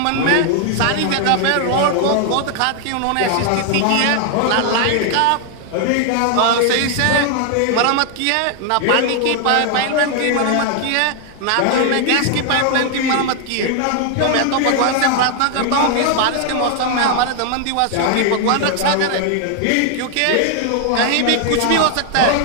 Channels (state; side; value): different; both; correlation 0.00